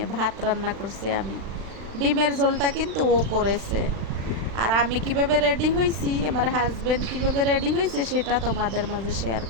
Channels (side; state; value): left; late; 36 ms